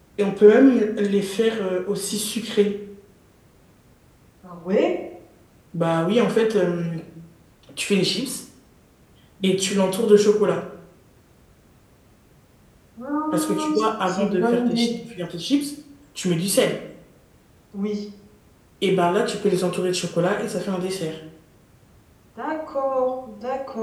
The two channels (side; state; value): both; identical; correlation 1.00